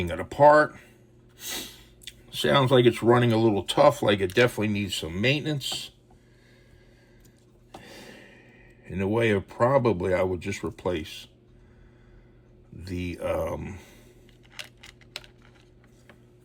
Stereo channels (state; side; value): identical; both; correlation 1.00